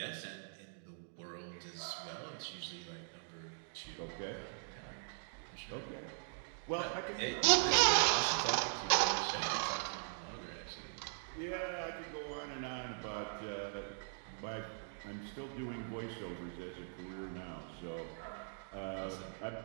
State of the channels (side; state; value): left; silent; digital silence